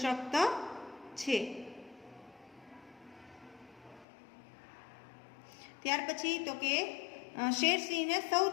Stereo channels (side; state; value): right; drops out; at 4.0 s